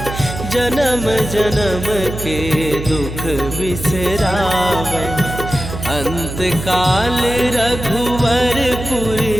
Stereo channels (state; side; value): noise; right; hum, 8 dB below the sound